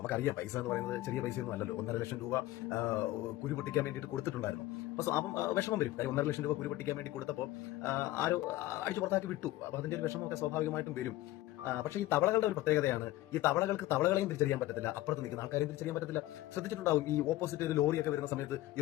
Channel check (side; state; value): right; quieter; 16.1 dB